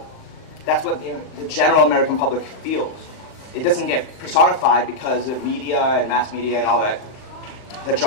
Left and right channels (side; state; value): right; late; 38 ms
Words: That's what the general American public feels. It doesn't get personified because of media and mass media and all that